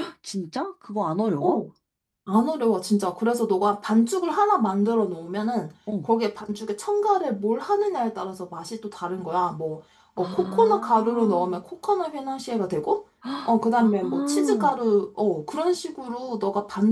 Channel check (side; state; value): both; identical; correlation 1.00